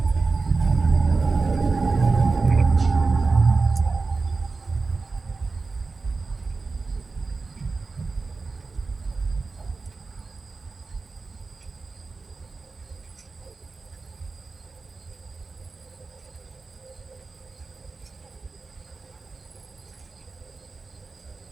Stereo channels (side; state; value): left; quieter; 4.1 dB